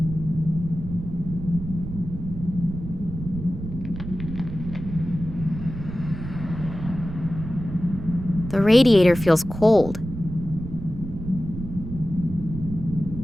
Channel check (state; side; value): noise; right; rumble, 9 dB below the sound